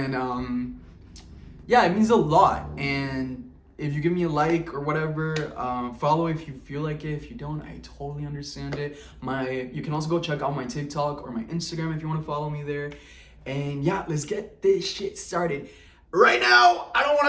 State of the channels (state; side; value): identical; both; correlation 1.00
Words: yeah, it means a lot. And if you give me a like or whatever, follow if you feel like it. If you don't, I totally understand it. You can also go check out my TikTok or my Instagram if you want to follow me there. And yeah, let's get this shit started. Right now, I don't